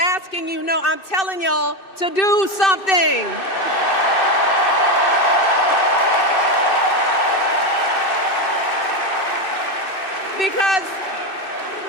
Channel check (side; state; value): right; late; 2.6 ms